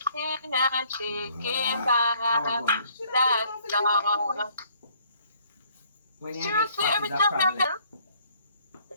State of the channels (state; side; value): inverted; both; correlation -0.62